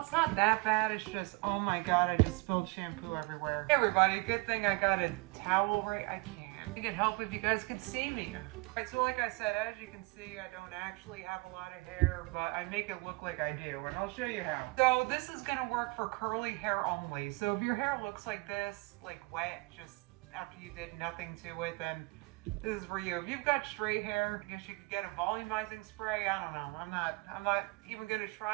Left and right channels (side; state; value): left; quieter; 26.6 dB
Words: not that bad, it's just, oh my god, I just spilled shampoo everywhere. Hey everybody, good thing I got a towel right, I can't. It could help if you guys could see me. Alright, so like I said, as you can see, I don't actually have a lot of hair, but I make it look like I do, and I'll show you how. So this is gonna work for curly hair only. So if your hair looks like this, like wet, just after you did nothing to it, then this is for you. If you've got straight hair, I guess you could get a volumizing spray. I don't know. I'm not even gonna